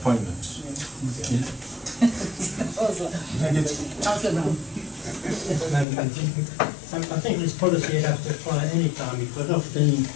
I think this policy would have to apply at any time because often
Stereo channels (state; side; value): drops out; right; at 5.9 s